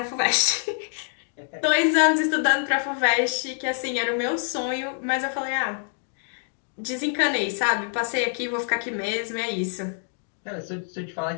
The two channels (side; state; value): right; silent; digital silence